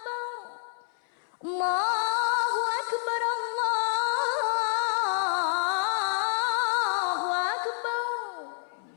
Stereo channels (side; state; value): right; silent; 59 dB below the other